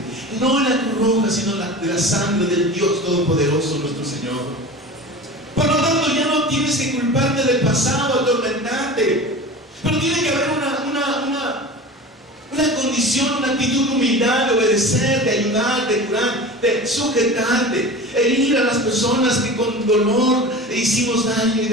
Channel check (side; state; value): both; normal; correlation 0.34